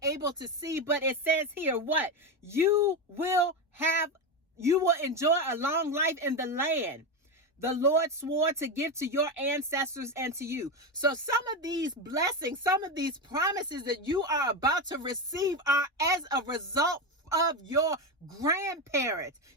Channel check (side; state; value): both; normal; correlation 0.14